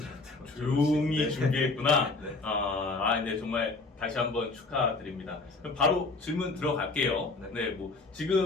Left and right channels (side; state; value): right; quieter; 3.6 dB